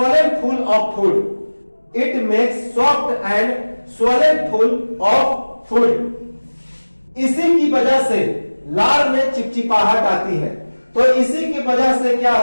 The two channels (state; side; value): inverted; both; correlation -1.00